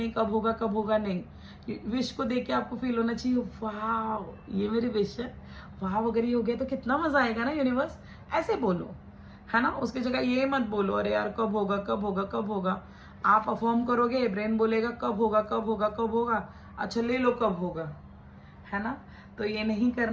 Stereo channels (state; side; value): identical; both; correlation 1.00